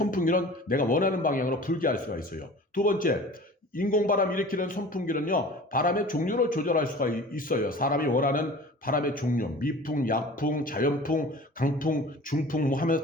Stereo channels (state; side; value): normal; both; correlation 0.42